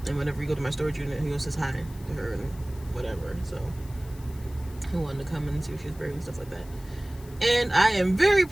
and whenever you go to my storage unit, he goes says hi to her and whatever. So he wanted to come and see if she was buried and stuff like that. And I am very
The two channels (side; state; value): left; noise; hiss, 22 dB below the sound